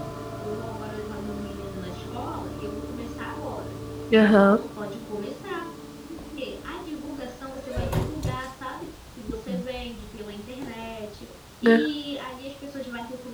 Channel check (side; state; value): both; identical; correlation 1.00